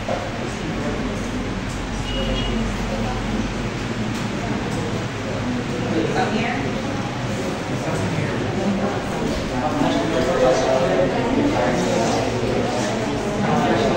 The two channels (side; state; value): both; identical; correlation 1.00